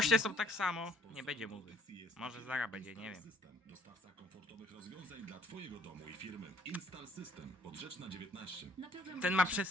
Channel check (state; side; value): normal; both; correlation 0.62